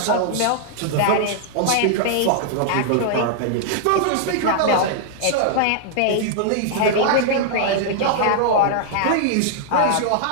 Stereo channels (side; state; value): both; different; correlation -0.01